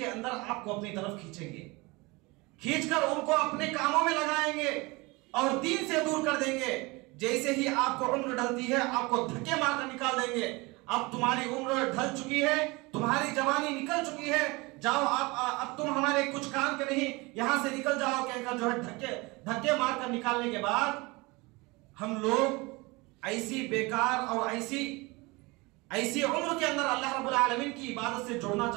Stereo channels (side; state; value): left; quieter; 24.6 dB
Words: اندر آپ کو اپنی طرف کھینچیں گے، کھینچ کر ان کو اپنے کاموں میں لگائیں گے اور دین سے دور کر دیں گے. جیسے ہی آپ کو عمر ڈھلتی ہے آپ کو دھکے مار کر نکال دیں گے. اب تمہاری عمر ڈھل چکی ہے، تمہاری جوانی نکل چکی ہے، جاؤ اب تم ہمارے کچھ کام کے نہیں، یہاں سے نکل جاؤ کہہ کر جو ہے دھکے مار کر نکالنے کے بعد ہم لوگ ایسی بیکار اور ایسی عمر کے اندر اللہ رب العالمین کی عبادت سے جڑنا